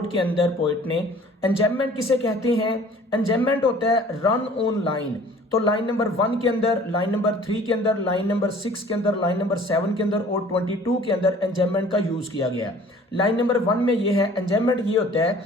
के अंदर पोइट ने। एंजेममेंट किसे कहते हैं? एंजेममेंट होता है रन ऑन लाइन, तो लाइन नंबर 1 के अंदर, लाइन नंबर 3 के अंदर, लाइन नंबर 6 के अंदर, लाइन नंबर 7 के अंदर और 22 के अंदर एंजाइममेंट का यूज किया गया है। लाइन नंबर 1 में ये है, एंजाइममेंट ये होता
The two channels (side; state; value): both; normal; correlation 0.51